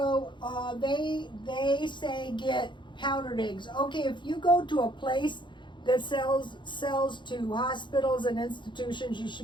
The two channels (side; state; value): right; late; 0.23 ms